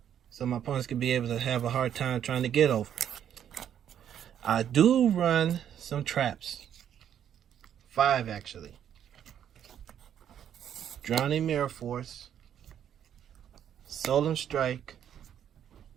opponents can be able to have a hard time trying to get over. I do run some traps. 5 actually. Drowning Mirror Force, Solemn Strike,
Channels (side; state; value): left; quieter; 9.6 dB